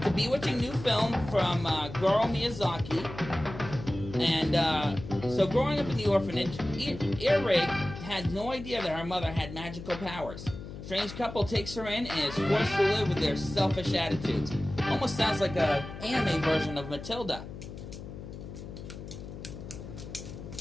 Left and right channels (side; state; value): left; noise; hum, 11 dB below the sound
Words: a bewitching new film from Goro Miyazaki. And so growing up in the orphanage, Earwig had no idea that her mother had magical powers. Strange couple takes her in and is forced to live with their selfish attitudes. Almost sounds like an anime version of Matilda.